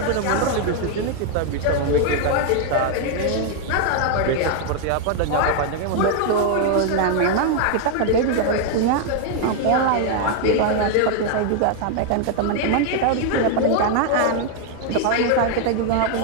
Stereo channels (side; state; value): both; different; correlation 0.00